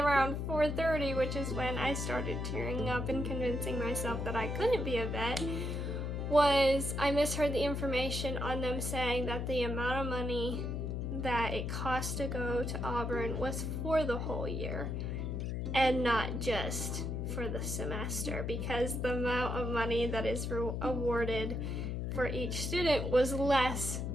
4:30, which is when I started tearing up and convincing myself that I couldn't be a vet, was I misheard the information on them saying that the amount of money that it costs to go to Auburn was for the whole year and not just for the semester, because the amount of money that is awarded for each student was less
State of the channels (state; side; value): noise; left; hum, 2 dB below the sound